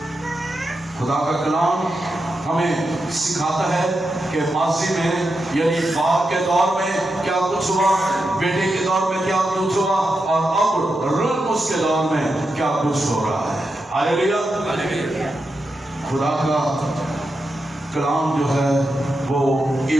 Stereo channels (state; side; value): normal; both; correlation 0.87